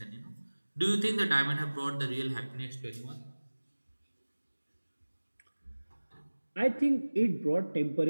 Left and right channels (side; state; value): both; inverted; correlation -1.00